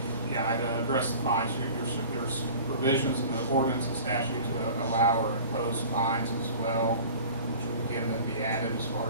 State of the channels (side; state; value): both; inverted; correlation -0.42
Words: yeah, I'd address the fines. There's provisions in the ordinance and statute to allow or impose fines as well, which would again then be added as far